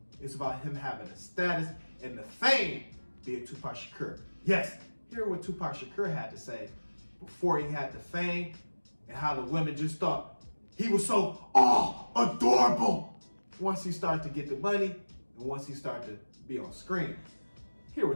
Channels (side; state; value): both; inverted; correlation -1.00